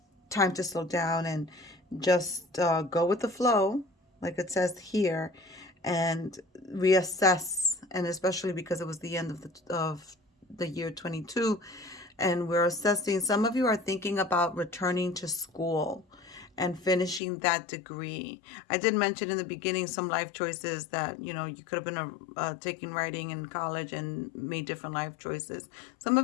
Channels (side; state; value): right; drops out; at 17.2 s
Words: to slow down and just go with the flow, like it says here, and reassess. And especially because it was the end of the year 22, and we're assessing. Some of you are thinking about returning to school and finishing that degree. I did mention in the beginning some life choices that, you know, you could have been taking writing in college and made different life choices. Some